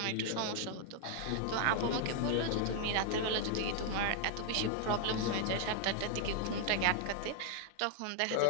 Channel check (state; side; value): different; both; correlation 0.00